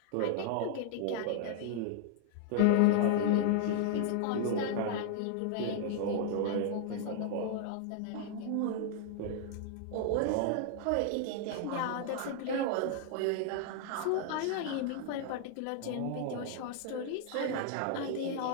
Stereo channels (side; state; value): both; different; correlation 0.00